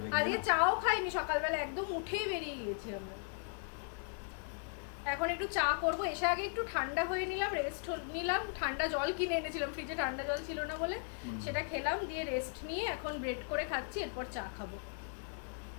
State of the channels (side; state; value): right; silent; 53 dB below the other